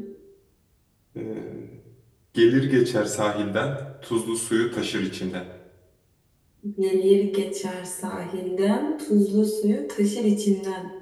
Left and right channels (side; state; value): both; identical; correlation 1.00